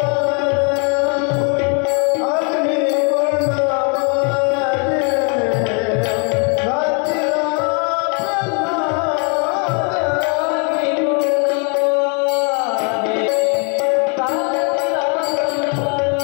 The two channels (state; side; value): quieter; right; 37.8 dB